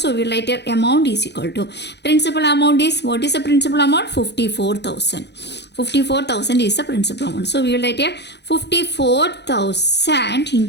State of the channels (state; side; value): late; right; 0.50 ms